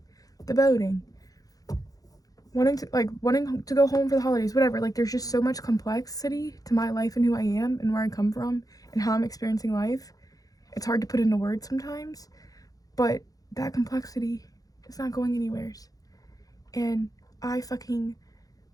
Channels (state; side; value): late; right; 0.17 ms